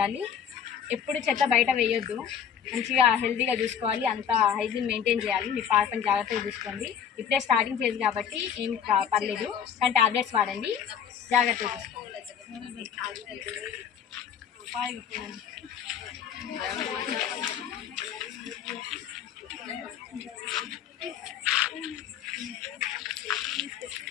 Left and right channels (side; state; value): right; quieter; 8.2 dB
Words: ఎప్పుడు చెత్త బయట వేయొద్దు. మంచిగా హెల్తీగా చూసుకోవాలి, అంతా హైజీన్ మెయింటైన్ చేయాలి. మీ పాపని జాగ్రత్తగా చూసుకోండి. ఇప్పుడే స్టార్టింగ్ ఫేజ్ కాబట్టి ఏం పర్లేదు, కానీ టాబ్లెట్స్ వాడండి, జాగ్రత్తగా చూసుకోండి.